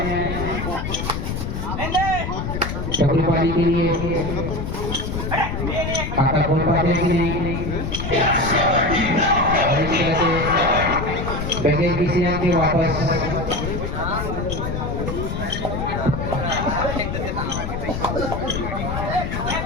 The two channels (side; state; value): left; noise; rumble, 3 dB below the sound